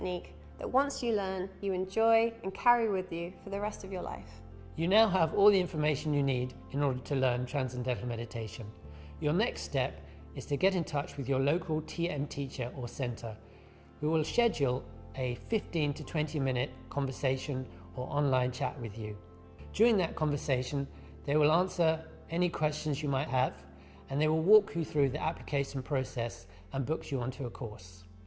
that once you learn, you enjoy and carry with you for the rest of your life. You now have all the information you need in order to learn Transcendental Meditation. Your next step is to get in touch with your local TM teacher or centre, who will schedule a 15 to 20 minute conversation or online chat with you. During that conversation, they will answer any questions you might have, and they will walk you through the application process and book you onto a course.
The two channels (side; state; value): both; identical; correlation 1.00